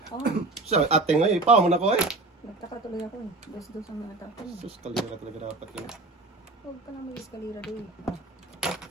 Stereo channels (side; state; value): left; quieter; 3.2 dB